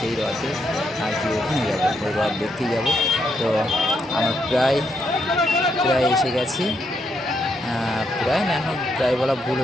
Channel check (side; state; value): both; normal; correlation 0.78